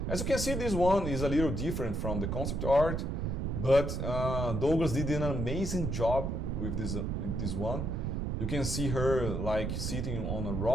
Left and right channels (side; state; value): right; noise; rumble, 1 dB below the sound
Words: As you can see, this one is a little different from the concept art, but Douglas did an amazing job with this one. You can see her like sitting on a